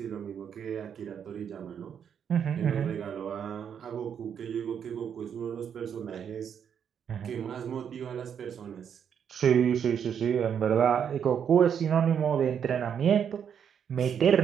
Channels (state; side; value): quieter; left; 8.0 dB